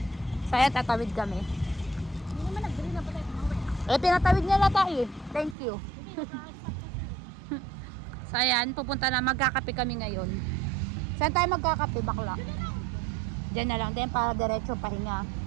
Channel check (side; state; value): left; drops out; at 5.6 s